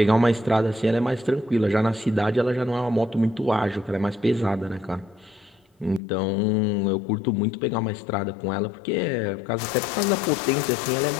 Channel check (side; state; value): right; drops out; at 6.0 s